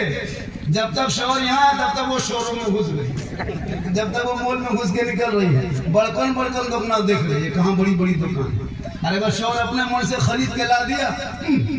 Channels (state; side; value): identical; both; correlation 1.00